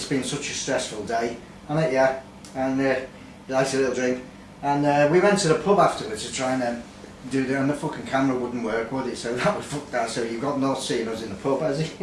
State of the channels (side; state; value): both; identical; correlation 1.00